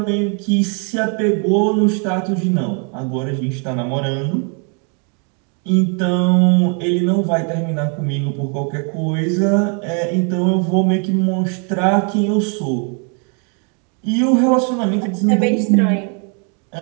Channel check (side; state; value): left; quieter; 38.2 dB